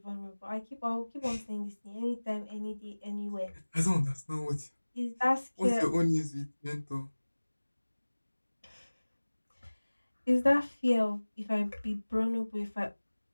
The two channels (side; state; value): both; inverted; correlation -1.00